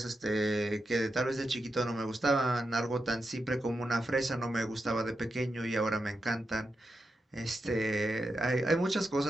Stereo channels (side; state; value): both; normal; correlation 0.87